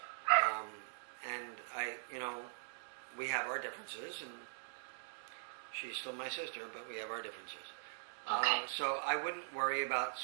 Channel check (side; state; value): left; silent; digital silence